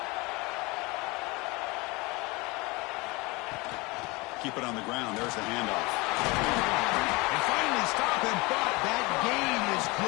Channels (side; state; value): right; quieter; 24.8 dB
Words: Keep it on the ground. There's the handoff. And finally stop him, but that gain is